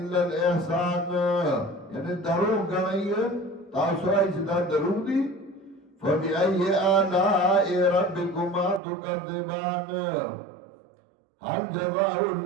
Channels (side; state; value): left; drops out; at 8.8 s